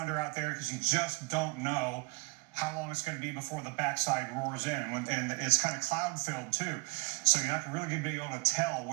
out there because you just don't know how long it's going to be before the backside roars in. And it's kind of cloud-filled, too. So you're not really going to be able to tell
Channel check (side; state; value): left; quieter; 30.0 dB